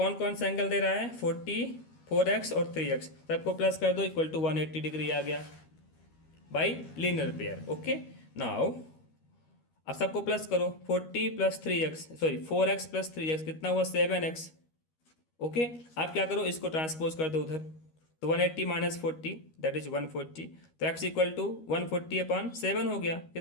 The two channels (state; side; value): late; right; 13 ms